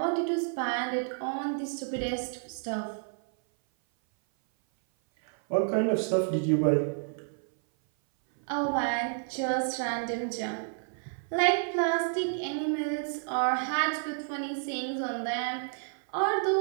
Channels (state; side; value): silent; left; 56 dB below the other